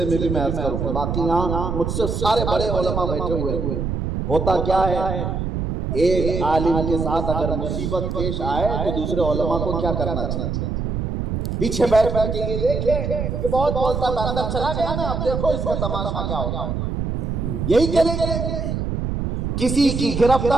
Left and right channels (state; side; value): noise; right; rumble, 2 dB below the sound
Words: میں بھی میں عرض کروں گا، باقی یہاں مجھ سے سارے بڑے علماء بیٹھے ہوئے ہیں۔ ہوتا کیا ہے، ایک عالم کے ساتھ اگر مصیبت پیش آئے تو دوسرے علماء کو کیا کرنا چاہیے؟ پیچھے بیٹھ کر کے یہ دیکھیں کہ بہت بولتا تھا اندر چلا گیا نا، اب دیکھو اس کا تماشا کیا ہوگا، یہی کریں گے۔ کسی کی